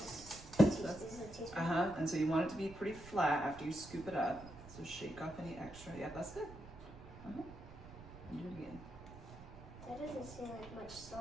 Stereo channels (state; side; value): noise; right; rumble, 16 dB below the sound